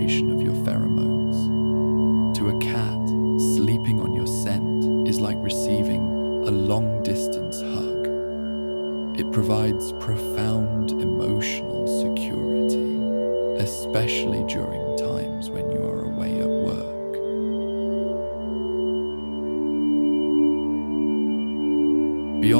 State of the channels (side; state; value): both; inverted; correlation -1.00